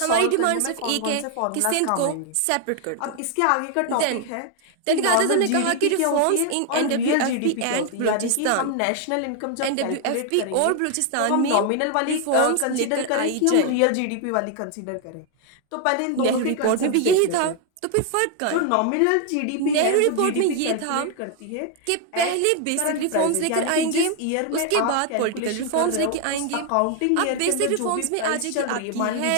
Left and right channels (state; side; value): different; both; correlation 0.00